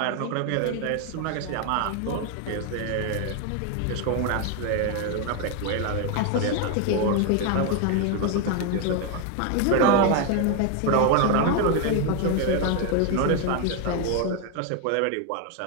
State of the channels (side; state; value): both; different; correlation 0.01